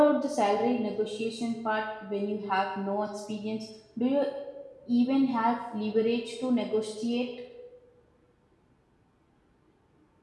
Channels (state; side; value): identical; both; correlation 1.00